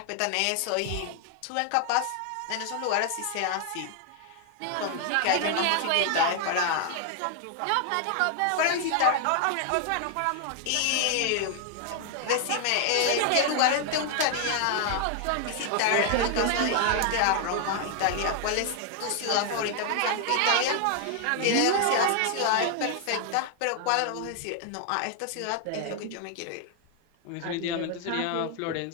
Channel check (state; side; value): different; both; correlation 0.00